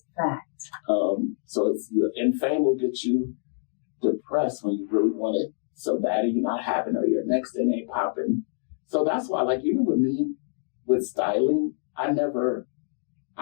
That's fact. So and fame will get you depressed when you really want it so bad and you're not having it or your next thing ain't popping. So that's why, like, even with me, with styling, I've never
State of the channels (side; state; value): right; silent; digital silence